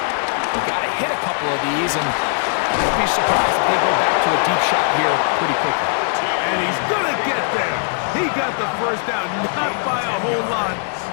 we've got to hit a couple of these, and don't be surprised if they go back to a deep shot here pretty quickly. And he's going to get there. He got the first down, not by a whole lot,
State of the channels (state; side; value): silent; right; 60 dB below the other